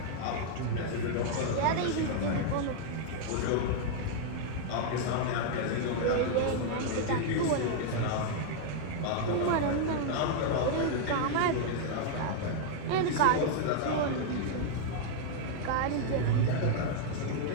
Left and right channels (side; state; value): both; different; correlation -0.01